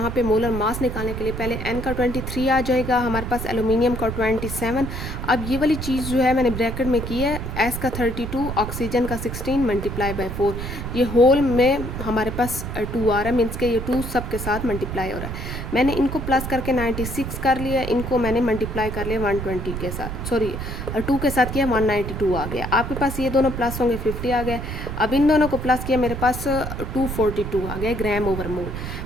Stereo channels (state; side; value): noise; right; rumble, 6 dB below the sound